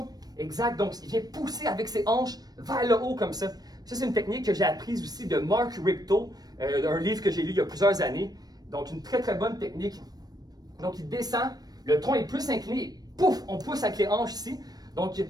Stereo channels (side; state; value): left; late; 0.19 ms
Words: Exact. Donc, il vient pousser avec ses hanches vers le haut comme ça. Ça, c'est une technique que j'ai apprise aussi de Mark Richter, un livre que j'ai lu il y a plusieurs années. Donc, une très bonne technique. Donc, il descend, le tronc est plus incliné, et pouf, on pousse avec les hanches ici. Donc,